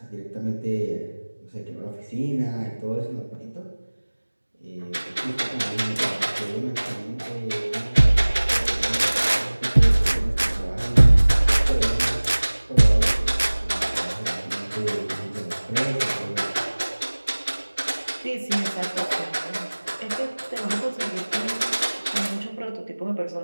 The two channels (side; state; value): both; inverted; correlation -1.00